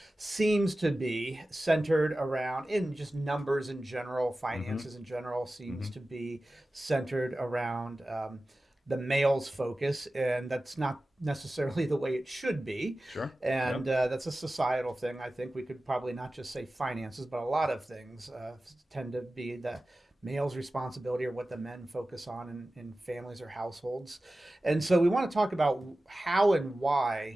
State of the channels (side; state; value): both; normal; correlation 0.95